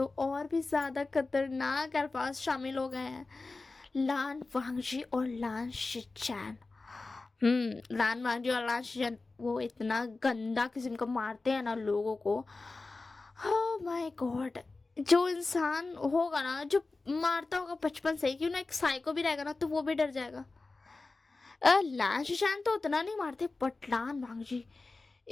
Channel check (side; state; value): right; quieter; 3.6 dB